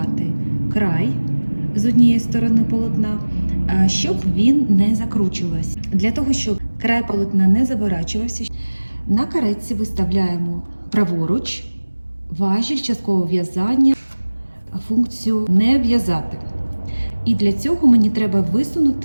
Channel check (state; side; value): inverted; both; correlation -1.00